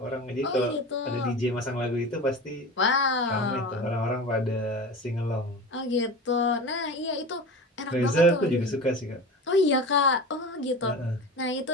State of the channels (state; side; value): normal; both; correlation 0.31